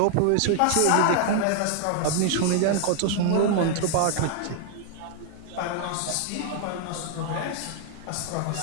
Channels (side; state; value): both; different; correlation 0.00